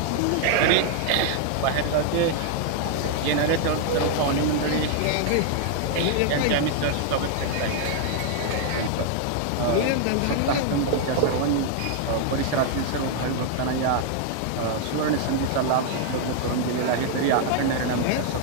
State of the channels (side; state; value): both; different; correlation 0.00